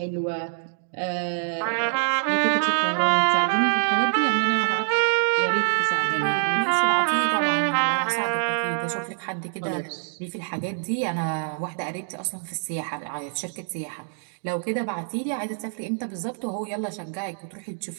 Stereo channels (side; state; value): left; silent; digital silence